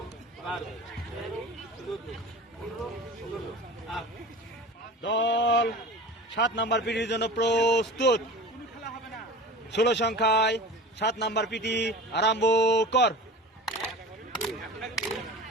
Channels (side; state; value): both; normal; correlation 0.36